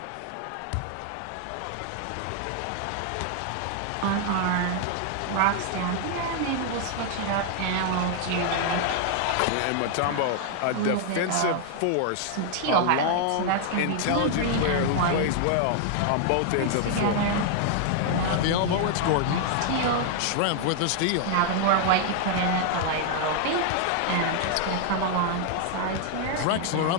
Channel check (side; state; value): both; different; correlation 0.00